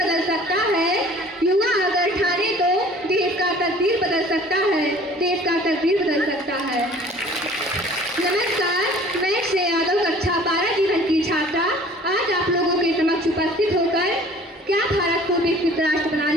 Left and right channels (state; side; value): normal; both; correlation 0.50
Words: सकता है। युवा अगर ठाने तो देश का तस्वीर बदल सकता है। नमस्कार, मैं श्रेया यादव, कक्षा 12 जीवन की छात्रा, आज आप लोगों के समक्ष उपस्थित होकर क्या भारत को विकसित राष्ट्र